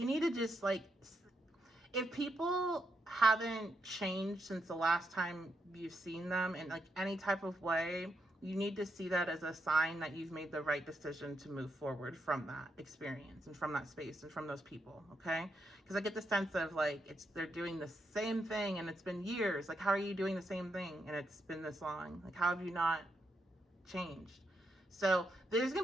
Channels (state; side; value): normal; both; correlation 0.81